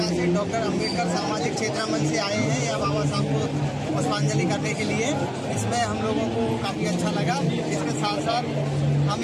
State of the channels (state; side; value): identical; both; correlation 1.00